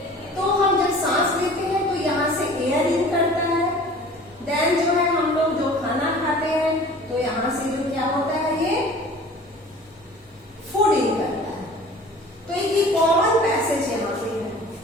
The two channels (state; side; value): normal; both; correlation 0.45